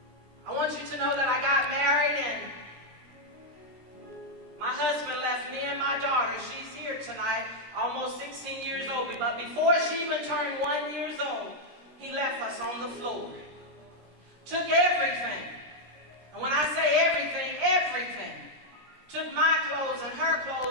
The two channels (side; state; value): left; late; 17 ms